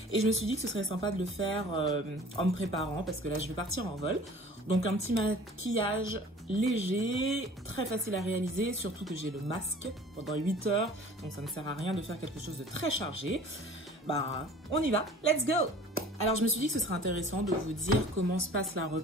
Et je me suis dit que ce serait sympa de le faire en me préparant parce que là, je vais partir en vol. Donc un petit maquillage léger, très facile à réaliser, surtout que j'ai le masque pendant 8 heures. Donc ça ne sert à rien de faire quelque chose de très chargé. Bah, on y va, let's go! Alors je me suis dit que ce serait intéressant de vous dire comment se passe la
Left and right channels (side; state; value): both; normal; correlation 0.47